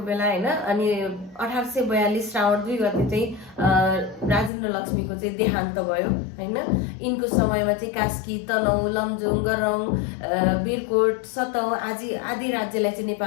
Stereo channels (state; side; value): drops out; right; at 4.5 s